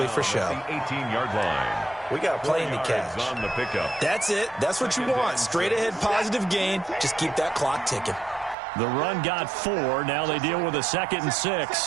for show. 18-yard line. We got a plane to catch. On the pickup. That's it. That's what you want. Straight ahead positive gain. Just keep that clock ticking. The run got 4. Now they deal with a 2nd and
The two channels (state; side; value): drops out; left; at 8.6 s